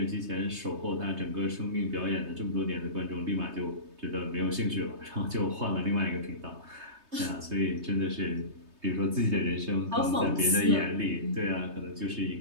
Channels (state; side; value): late; left; 3.3 ms